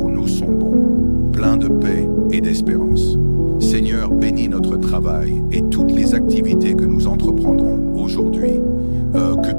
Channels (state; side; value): inverted; both; correlation -1.00